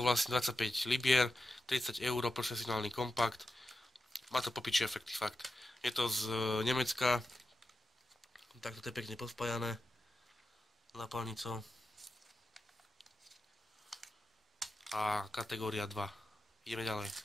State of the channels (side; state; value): both; normal; correlation 0.91